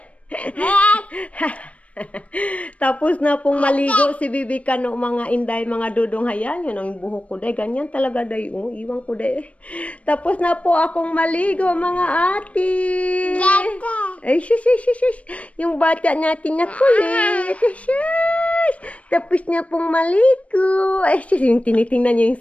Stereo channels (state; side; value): late; right; 0.065 ms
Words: Tapos na pong maligo si Bibi Kano, mga inday, mga dudong. Hayan, yun ang buhok ko, day. Ganyan talaga, day. Oh, iwan ko, day. Tapos na po akong maligo, mga ate. Ay, shush. Yung bata natin na kulit. Shush. Tapos na pong maligo. Ay, shush. Yung tinitingnan niya